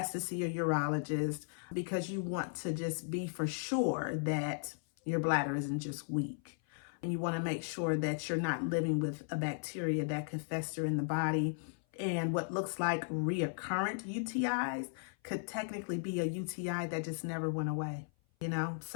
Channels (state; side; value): silent; right; 54 dB below the other